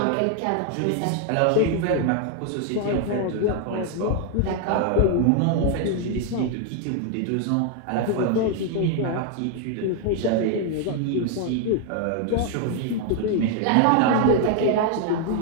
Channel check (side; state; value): both; different; correlation 0.00